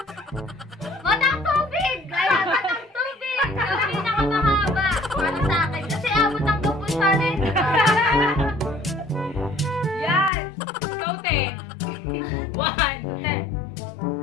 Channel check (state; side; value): drops out; right; at 10.3 s